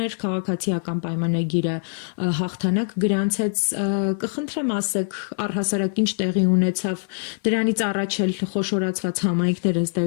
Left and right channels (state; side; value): silent; right; 60 dB below the other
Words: էր, քաղաքացիական պայմանագիրը հաղթանակ գրանցեց, կխնդրեմ ասեք, առհասարակ ինչ տեղի ունեցավ, դրանից առաջ էլ խոշորացված համայնքները ըստ